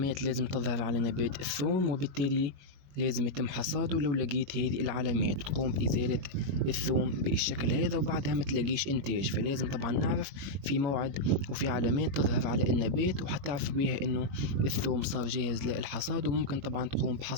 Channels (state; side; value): late; left; 21 ms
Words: لازم تظهر على نبات الثوم، وبالتالي لازم يتم حصاده. لو لقيت هذه العلامات تقوم بإزالة الثوم بالشكل هذا وبعدها ما تلاقيش إنتاج، فلازم طبعا نعرف في موعد وفي علامات تظهر على النبات وحتعرف بها إنه الثوم صار جاهز للحصاد وممكن طبعا تقوم